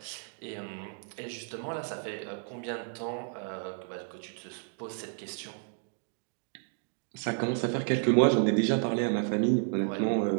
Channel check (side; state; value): left; silent; 55 dB below the other